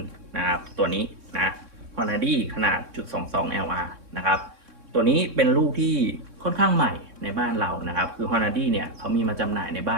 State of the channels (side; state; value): left; late; 3.6 ms